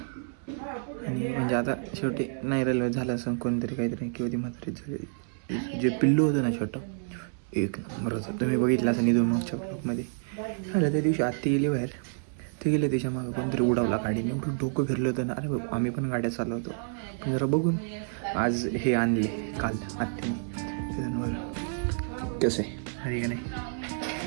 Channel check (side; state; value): left; silent; digital silence